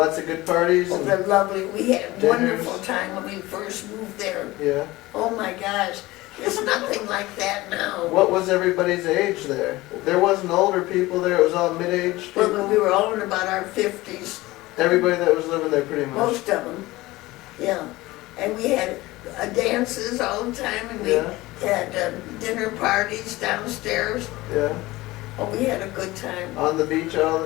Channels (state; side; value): quieter; right; 19.3 dB